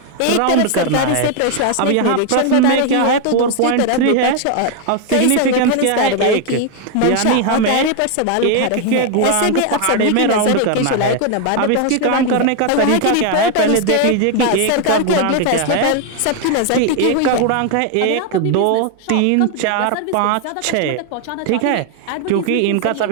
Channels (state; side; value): different; both; correlation 0.01